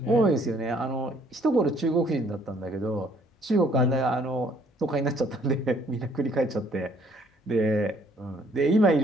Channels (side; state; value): both; normal; correlation 0.62